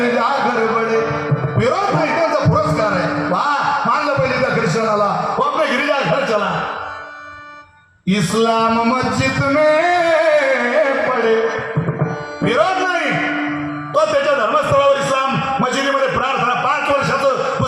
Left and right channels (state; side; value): identical; both; correlation 1.00